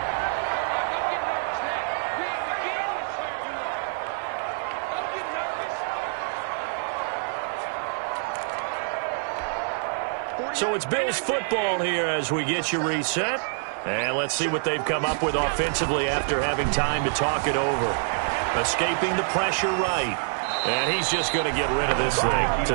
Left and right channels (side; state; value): left; silent; 61 dB below the other